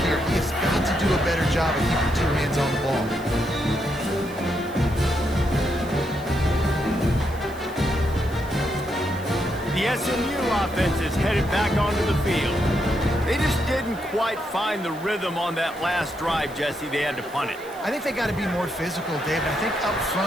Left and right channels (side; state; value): right; noise; hiss, 21 dB below the sound